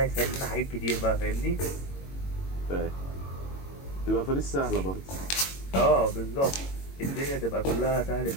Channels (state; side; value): late; right; 22 ms